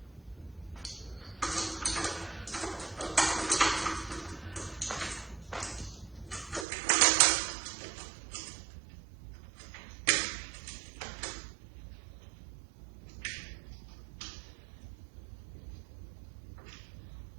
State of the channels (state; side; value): drops out; left; at 6.7 s